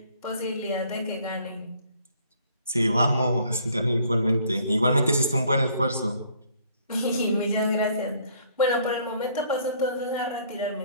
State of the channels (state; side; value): inverted; both; correlation -0.61